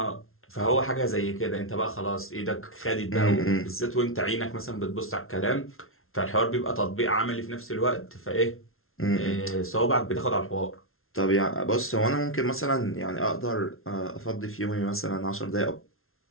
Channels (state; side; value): late; right; 0.62 ms